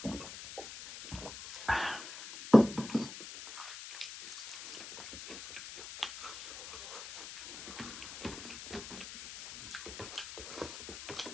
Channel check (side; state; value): left; noise; hiss, 10 dB below the sound